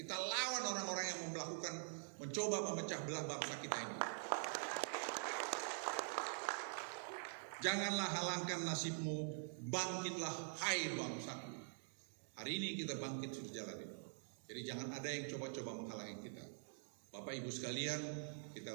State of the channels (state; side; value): silent; left; digital silence